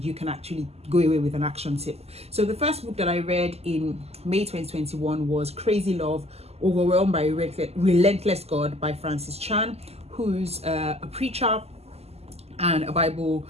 you can actually go away with an action tip. So the first book that I read in May 2021 was Crazy Love, Overwhelmed by Relentless God by Francis Chan, who's a preacher and a Bible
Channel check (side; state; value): left; late; 0.30 ms